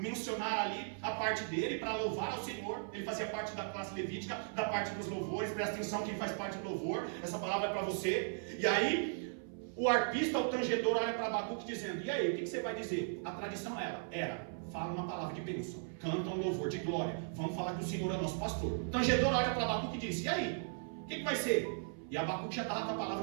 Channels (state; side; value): silent; left; 53 dB below the other